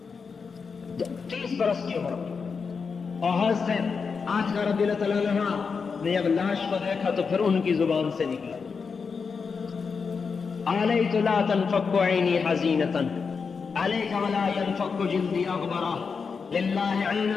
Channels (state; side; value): quieter; right; 5.4 dB